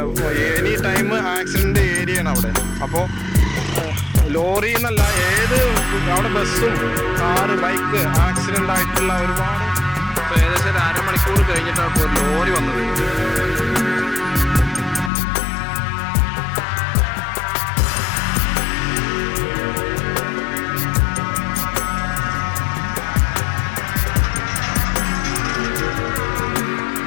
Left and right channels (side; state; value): right; drops out; at 15.1 s